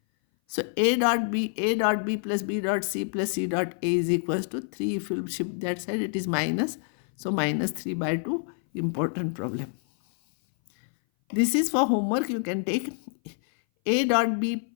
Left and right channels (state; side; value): silent; right; 58 dB below the other